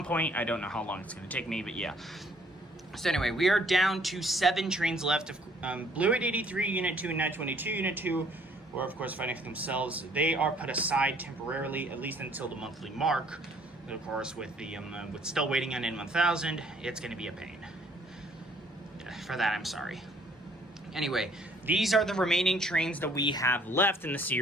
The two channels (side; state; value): both; normal; correlation 0.60